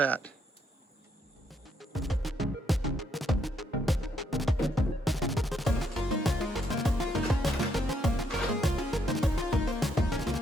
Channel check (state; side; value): normal; both; correlation 0.74